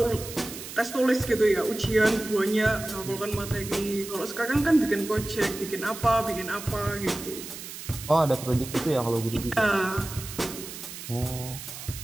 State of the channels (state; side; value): noise; right; hiss, 11 dB below the sound